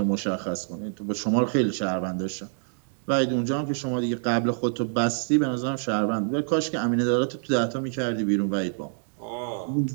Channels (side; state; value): left; silent; digital silence